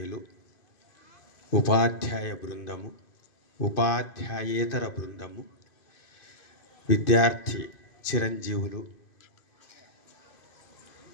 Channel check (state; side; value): late; right; 2.5 ms